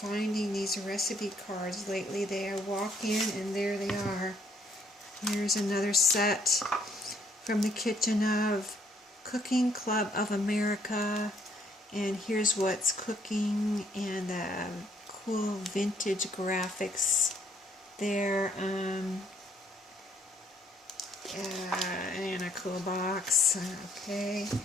these recipe cards lately. I walk in and there they are. Here's another set from the Kitchen of Cooking Club of America. And here's what's cooking, and cool vintage graphics there. And a cool box. Okay,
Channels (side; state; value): both; normal; correlation 0.67